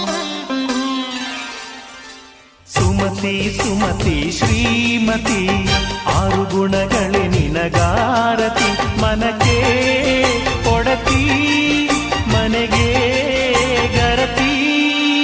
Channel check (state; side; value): identical; both; correlation 1.00